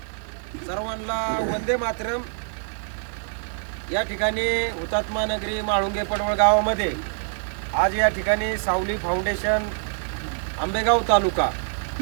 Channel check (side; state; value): left; silent; digital silence